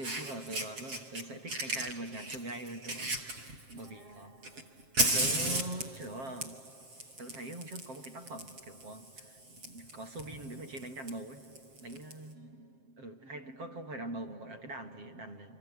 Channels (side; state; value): left; late; 7.6 ms